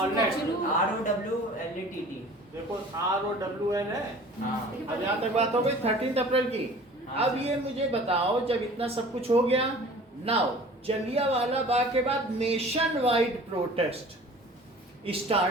शुरू ROWLETT देखो ROWL है। हाँ अब यहाँ तक बात हो गई 13 अप्रैल की। हाँ। अब ये मुझे बताओ, जब इतना सब कुछ हो गया, नाउ जलियांवाला बाग के बाद nation wide protest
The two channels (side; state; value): both; normal; correlation 0.45